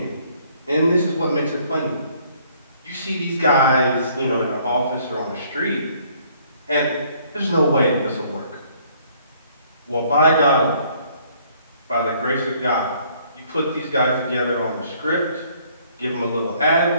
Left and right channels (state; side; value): inverted; both; correlation -0.62